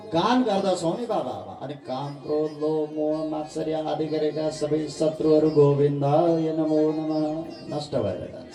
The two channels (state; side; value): identical; both; correlation 1.00